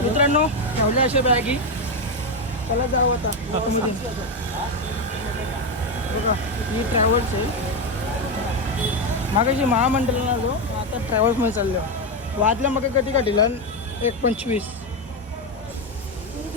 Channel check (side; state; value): both; normal; correlation 0.09